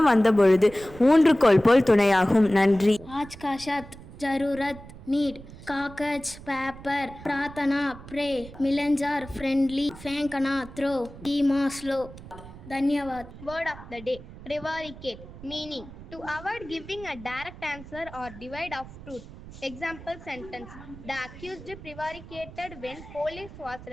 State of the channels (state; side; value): noise; right; rumble, 16 dB below the sound